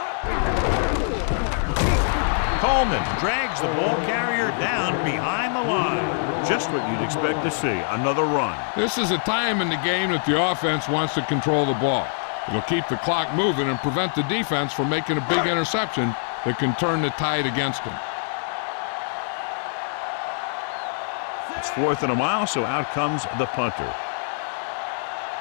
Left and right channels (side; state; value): right; silent; digital silence